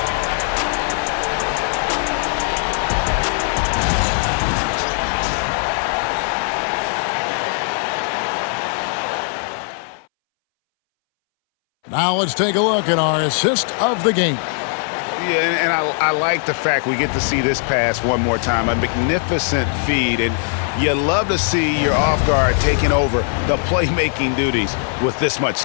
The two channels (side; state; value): right; silent; 64 dB below the other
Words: Now let's take a look at our assist of the game. Yeah, and I like the fact we get to see this pass one more time. A magnificent feed, and you love to see your off guard taking over the playmaking duties with this much